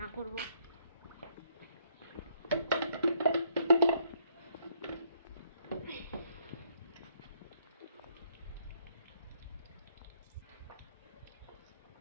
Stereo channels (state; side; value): inverted; both; correlation -0.70